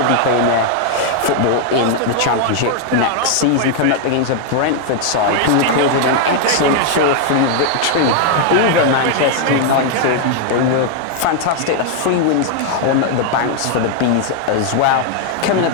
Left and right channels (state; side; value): different; both; correlation 0.00